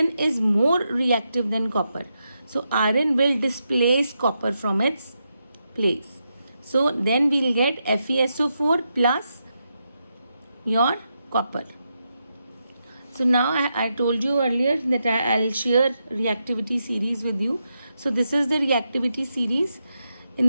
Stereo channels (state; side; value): inverted; both; correlation -0.85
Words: is more reactive than copper. So iron will displace copper from its place. So then we will get FeSO4 plus your copper. So now I told you earlier that I'll share reactivity series with you. So this is the reactivity series.